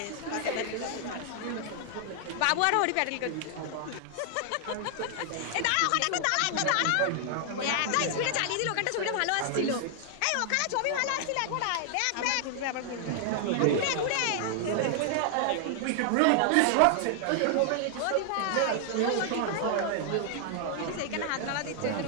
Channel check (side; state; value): both; different; correlation 0.00